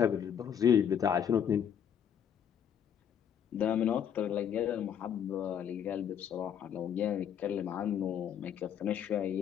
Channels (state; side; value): quieter; right; 8.7 dB